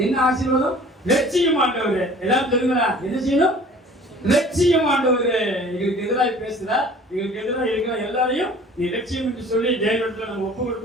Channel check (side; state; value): both; normal; correlation 0.48